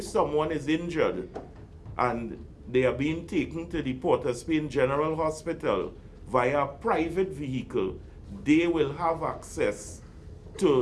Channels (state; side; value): identical; both; correlation 1.00